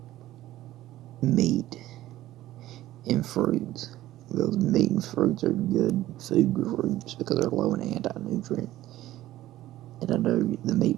meat and fruits. Because meat and fruits are good food groups because they're low in anti-nutrients. And I know the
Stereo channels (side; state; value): left; quieter; 14.9 dB